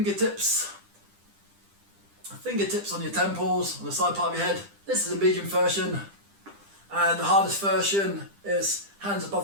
on your temples, on the side part of your head. This is a medium version. And the hardest version is hands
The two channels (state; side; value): late; left; 10 ms